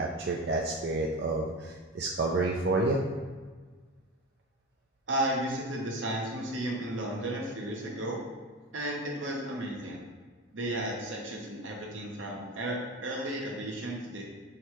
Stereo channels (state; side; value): normal; both; correlation 0.26